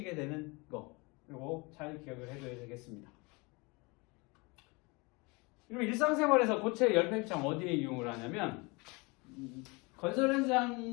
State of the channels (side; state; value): right; quieter; 27.0 dB